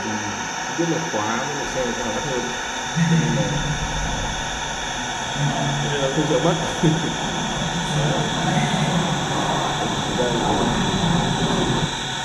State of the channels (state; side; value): identical; both; correlation 1.00